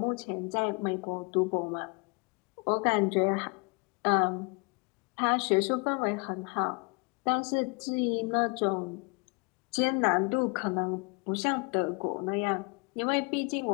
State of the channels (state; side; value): quieter; right; 31.7 dB